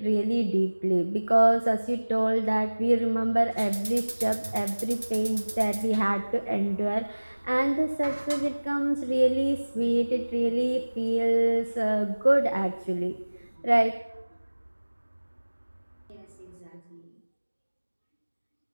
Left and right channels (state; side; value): inverted; both; correlation -1.00